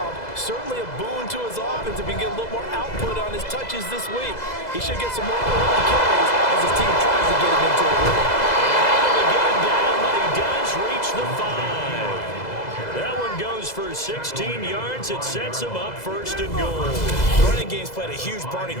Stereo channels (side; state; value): right; late; 2.0 ms